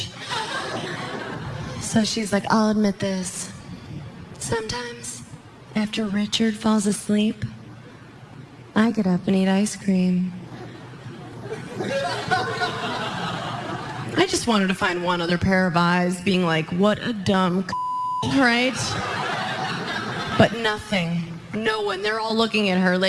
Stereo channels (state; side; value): identical; both; correlation 1.00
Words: So she's like, I'll admit this. Sometimes, after Richard falls asleep, I get up and eat ice cream. I just wanted to find one other pair of eyes being like, what a dumb right? But nothing. No one. They're all looking at her